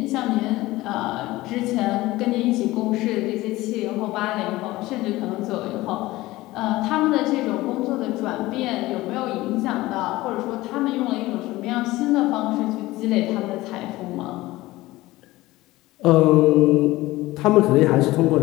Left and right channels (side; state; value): right; quieter; 18.5 dB